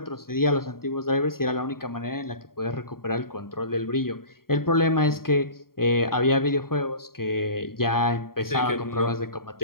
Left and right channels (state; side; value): late; right; 0.93 ms